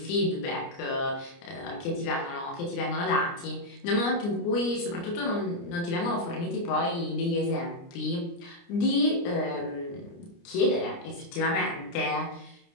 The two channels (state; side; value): late; right; 29 ms